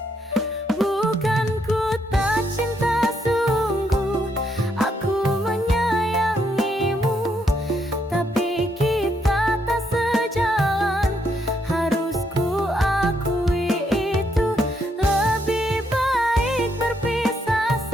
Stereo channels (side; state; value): both; normal; correlation 0.75